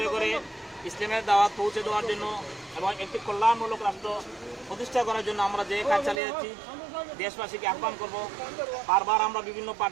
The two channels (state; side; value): drops out; left; at 6.2 s